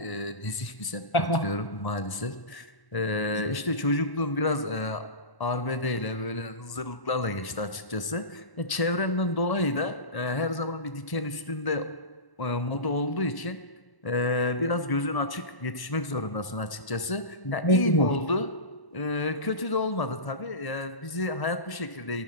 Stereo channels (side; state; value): right; late; 1.1 ms